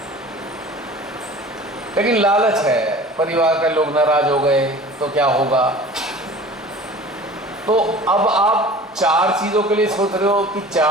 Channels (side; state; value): both; normal; correlation 0.42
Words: लेकिन लालच है, परिवार के लोग नाराज हो गए तो क्या होगा। तो अब आप 4 चीज़ों के लिए सोच रहे हो कि